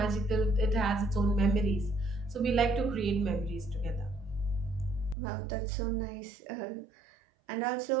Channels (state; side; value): drops out; left; at 5.2 s